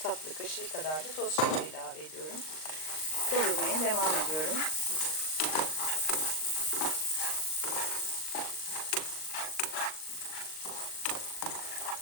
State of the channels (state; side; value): late; right; 38 ms